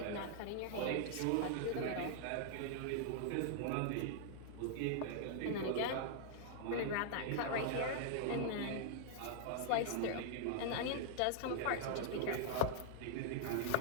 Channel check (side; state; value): both; different; correlation -0.01